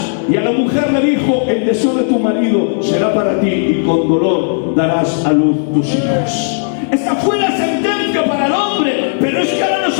Y a la mujer le dijo: el deseo de tu marido será para ti, y con dolor darás a luz tus hijos. Esta fue la sentencia para el hombre, pero es que ahora nos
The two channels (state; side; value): silent; right; digital silence